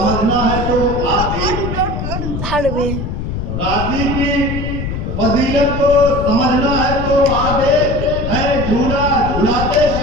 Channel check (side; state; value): left; noise; rumble, 4 dB below the sound